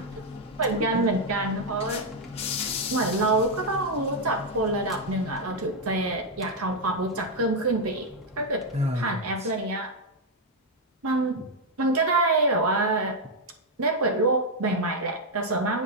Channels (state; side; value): normal; both; correlation 0.00